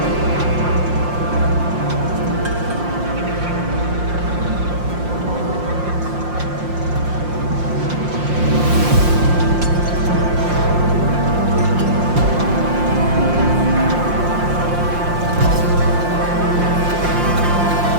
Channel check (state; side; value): late; left; 5.7 ms